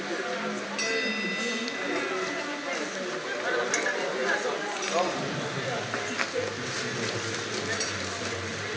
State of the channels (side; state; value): both; identical; correlation 1.00